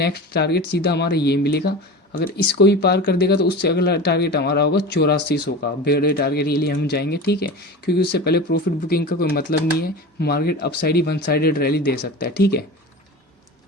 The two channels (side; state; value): both; normal; correlation 0.31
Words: टारगेट सीधा हमारा ये मिलेगा। अगर इसको भी पार कर देगा तो उससे अगला टारगेट हमारा होगा 8400 का, बड़े टारगेट के लिए हम जाएंगे, ठीक है। क्योंकि उससे पहले प्रॉफिट बुकिंग का कोई मतलब नहीं है, मार्केट अपसाइड ही वन साइडेड रैली दे सकता है, ठीक है।